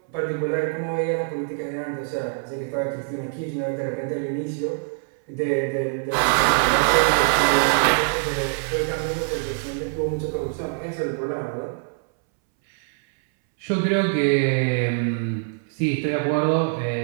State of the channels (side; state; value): left; silent; 62 dB below the other